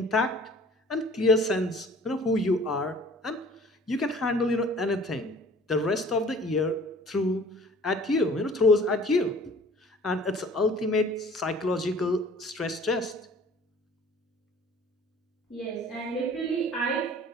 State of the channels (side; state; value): both; normal; correlation 0.50